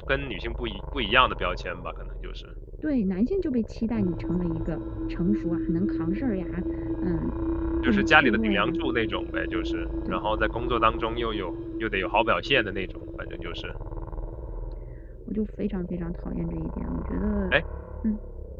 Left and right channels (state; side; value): identical; both; correlation 1.00